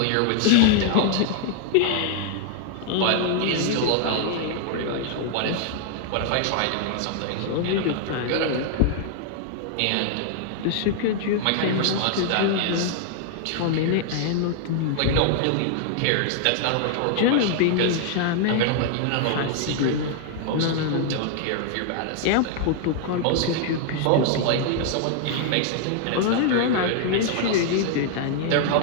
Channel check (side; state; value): both; different; correlation 0.00